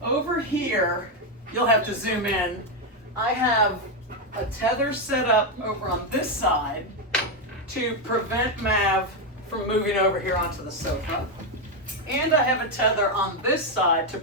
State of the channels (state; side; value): normal; both; correlation 0.05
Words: over here, you'll have to zoom in. I have a tether set up over on this side to prevent Mav from moving over here onto the sofa. And I have a tether on this side to